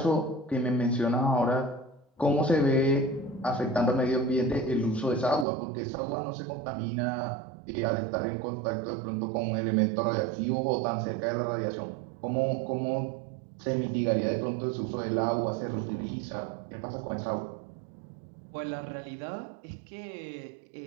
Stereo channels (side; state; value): left; drops out; at 5.5 s